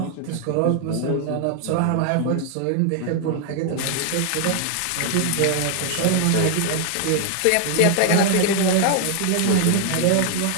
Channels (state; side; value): different; both; correlation 0.00